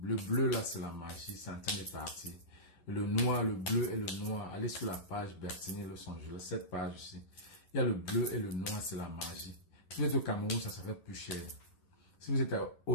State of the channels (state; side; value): late; right; 11 ms